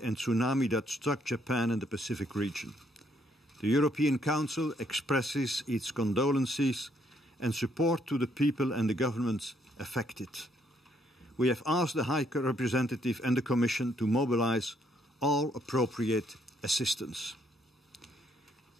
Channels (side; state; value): both; normal; correlation 0.70